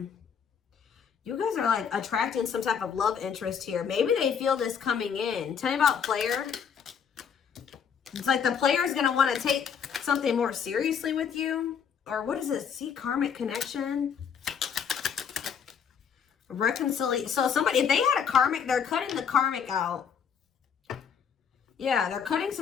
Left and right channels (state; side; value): quieter; right; 7.2 dB